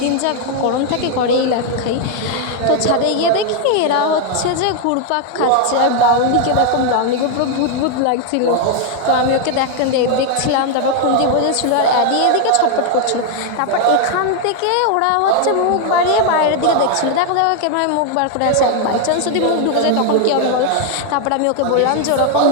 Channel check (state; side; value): different; both; correlation 0.00